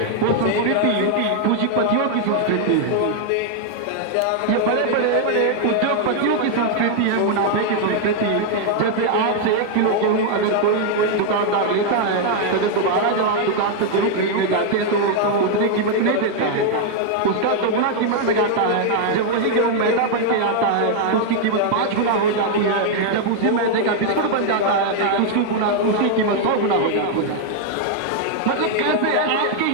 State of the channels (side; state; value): both; different; correlation 0.00